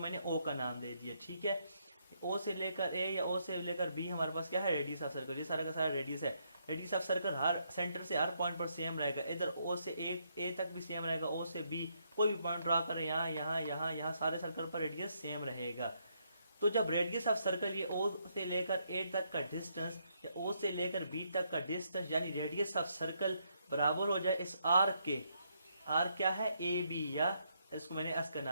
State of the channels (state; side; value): inverted; both; correlation -0.75